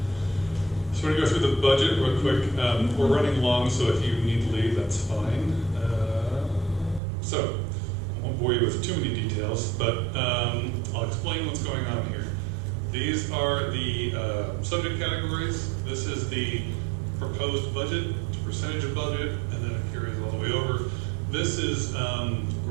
So we're gonna go through the budget real quick. We're running long, so if you need to leave, that's fine. So I won't bore you with too many details, but I'll explain what's going on here. These are the subject categories. This is the proposed budget, it's a percentage of budget, and then it carries all the way over. This is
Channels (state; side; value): drops out; left; at 7.0 s